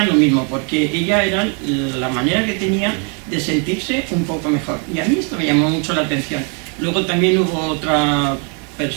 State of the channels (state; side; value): quieter; left; 37.6 dB